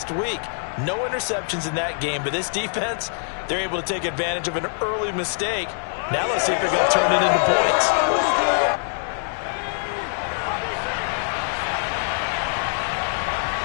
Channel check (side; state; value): right; silent; 63 dB below the other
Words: week. No interceptions in that game, but this defense, they're able to take advantage of an early mistake. Now let's see if they're going to turn it into points.